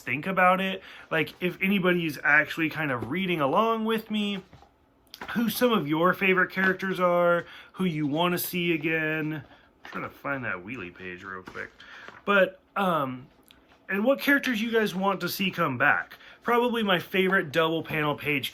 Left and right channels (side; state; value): both; identical; correlation 1.00